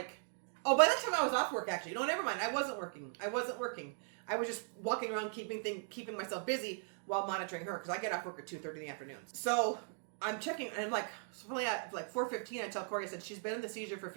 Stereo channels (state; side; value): silent; left; 52 dB below the other